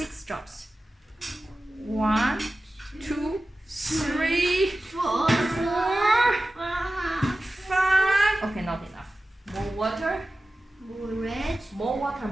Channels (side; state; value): both; normal; correlation 0.95